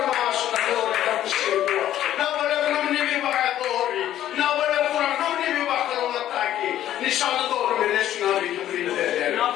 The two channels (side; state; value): right; quieter; 12.1 dB